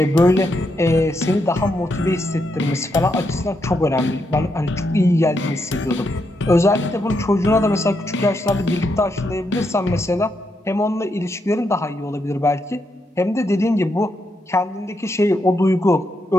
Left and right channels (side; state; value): both; normal; correlation 0.81